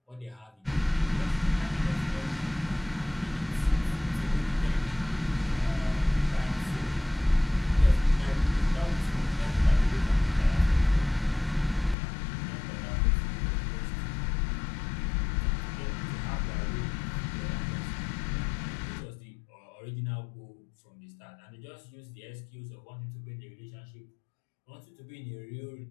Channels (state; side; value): drops out; right; at 12.0 s